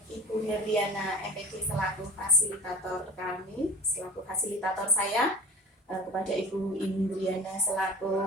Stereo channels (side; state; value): both; normal; correlation 0.36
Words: Ibu Herdiana MPD selaku fasilitator kami, selaku fasilitator saya, kepada Ibu Indriana